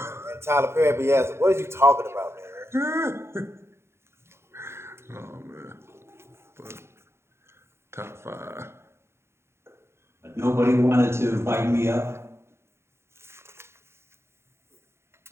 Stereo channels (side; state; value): left; late; 0.12 ms